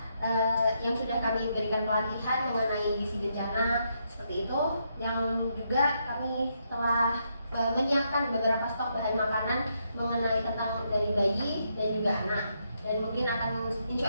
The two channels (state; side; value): inverted; both; correlation -0.78